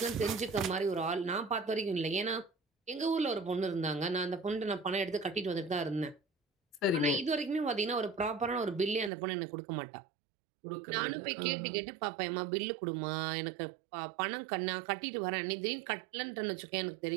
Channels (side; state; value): left; drops out; at 9.1 s